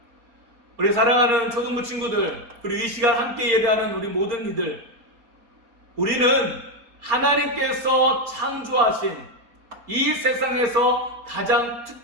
우리 사랑하는 초등부 친구들, 그리고 이 시간 함께 예배하는 우리 모든 이들, 우리는 하나님께서 창조하신 이 세상에서 가장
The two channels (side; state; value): left; late; 4.3 ms